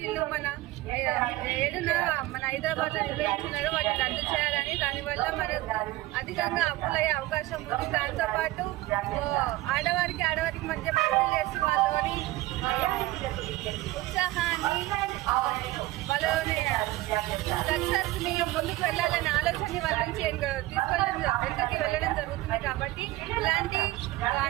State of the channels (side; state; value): left; quieter; 17.9 dB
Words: మన 7న మన హైదరాబాద్లో నిర్వహించినారో వాటిని రద్దు చేయాలని, దానివల్ల మన అధికంగా అప్పులయ్యే అవకాశం ఉంది. దాంతోపాటు ఆడవారికి మధ్య పోటీలు చేసి వాళ్ళని ఉత్సాహాన్ని వాళ్ళని సక్సెస్ ని ముందుకు వెళ్ళాలనే ఆలోచన వాళ్ళ నుంచి వెనకకి వెళ్ళడం జరుగుతుంది. కాబట్టి ఇలాంటి